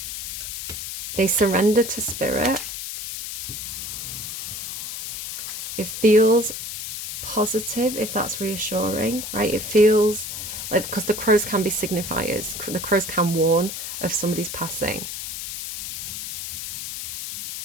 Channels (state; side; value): noise; left; hiss, 6 dB below the sound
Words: They surrender to spirit. It feels positive, if that's reassuring, right? It feels like, because the crows can be signifiers. The crows can warn of somebody's passing.